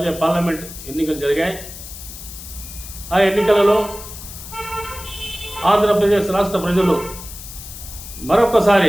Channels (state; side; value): noise; left; hiss, 13 dB below the sound